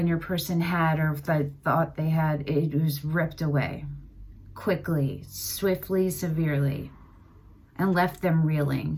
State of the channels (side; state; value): both; identical; correlation 1.00